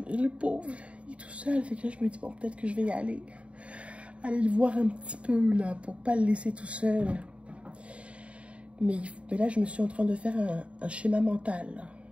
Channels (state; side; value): late; left; 0.062 ms